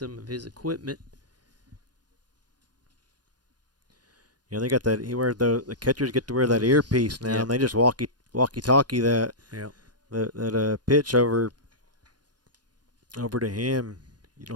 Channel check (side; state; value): left; late; 0.69 ms